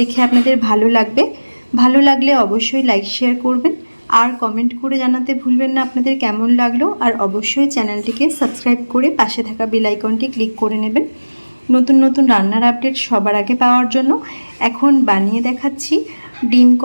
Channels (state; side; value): inverted; both; correlation -1.00